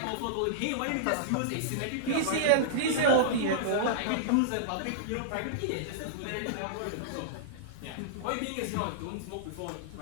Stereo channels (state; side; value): different; both; correlation -0.02